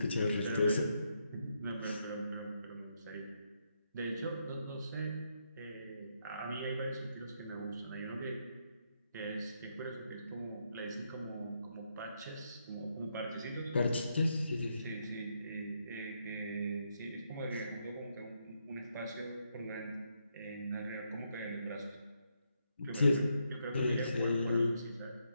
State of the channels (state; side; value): inverted; both; correlation -0.79